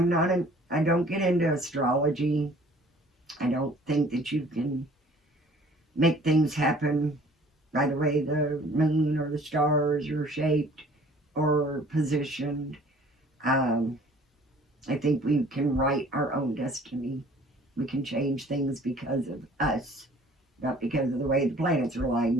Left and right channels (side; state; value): both; normal; correlation 0.53